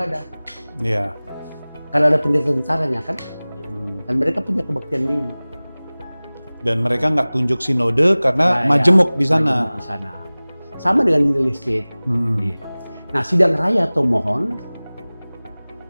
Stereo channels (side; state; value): both; inverted; correlation -0.99